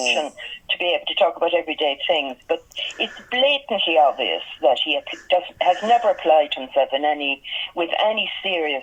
and to be able to talk about everyday things. But it's blatantly obvious that he has never applied himself with any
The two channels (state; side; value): identical; both; correlation 1.00